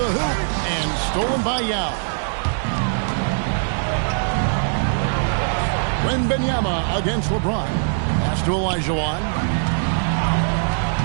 hoop, and stolen by Yao. Wembanyama against LeBron. Pass to Olajuwon.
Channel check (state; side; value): silent; left; digital silence